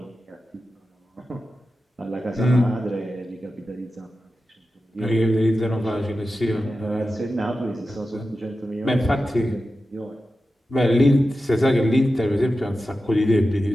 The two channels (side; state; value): both; normal; correlation 0.93